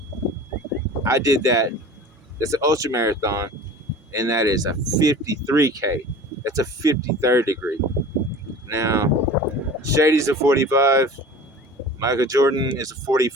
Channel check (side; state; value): both; normal; correlation 0.40